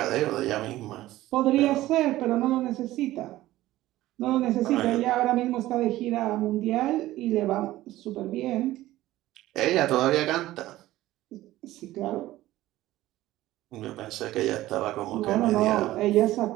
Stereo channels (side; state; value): left; quieter; 15.9 dB